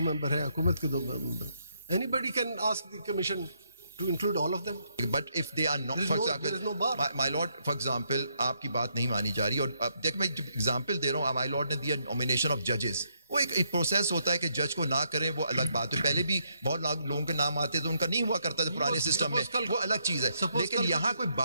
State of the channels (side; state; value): both; inverted; correlation -0.76